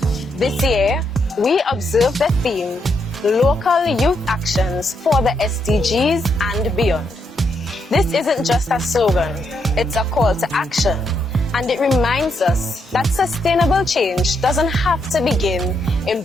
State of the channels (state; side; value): normal; both; correlation 0.78